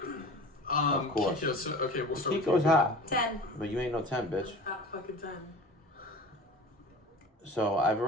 Of course. Kiko, so, okay, we'll start with Kiko's Kiko. hot. 10. But you ain't no 10, bitch. Not fucking 10. So I've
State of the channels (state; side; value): normal; both; correlation 0.38